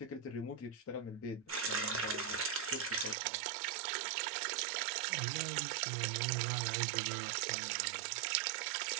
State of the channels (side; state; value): left; drops out; at 3.2 s